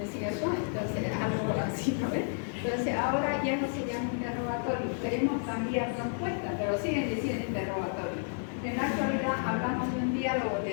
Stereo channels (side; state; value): right; silent; digital silence